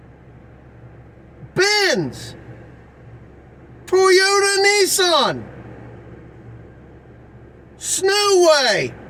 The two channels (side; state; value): both; identical; correlation 1.00